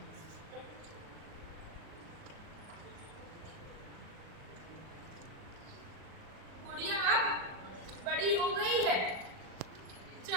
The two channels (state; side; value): late; left; 38 ms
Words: गुड़िया अब बड़ी हो गई है,